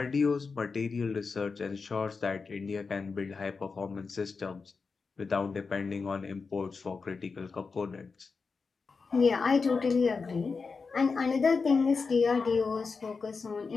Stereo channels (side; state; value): right; quieter; 4.7 dB